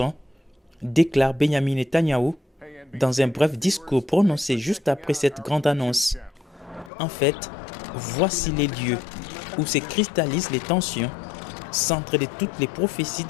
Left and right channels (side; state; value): right; drops out; at 6.9 s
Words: déclare Benjamin Netanyahou dans un bref discours prononcé juste après cette grande annonce. En fait, voici les lieux où se cristallisent les tensions, centre de toutes les prophéties